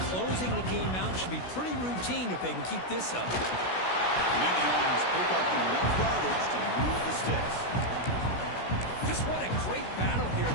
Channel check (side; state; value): right; late; 16 ms